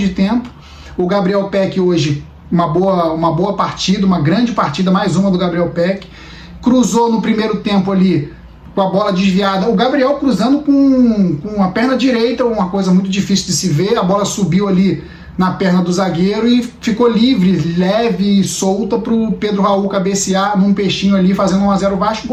tempo. O Gabriel Peck hoje, uma boa partida, uma grande partida, mais uma do Gabriel Peck. Cruzou no primeiro tempo ali com a bola desviada. O Gabriel cruzando com a perna direita, uma coisa muito difícil de se ver. A bola subiu ali na perna do zagueiro e ficou livre, leve e solta para o Pedro Raul cabecear num peixinho ali, fazendo 1-0 Vasco.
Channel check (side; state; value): both; identical; correlation 1.00